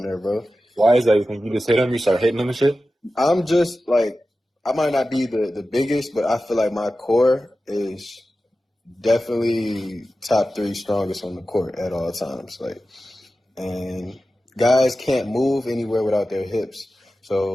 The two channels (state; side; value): normal; both; correlation 0.94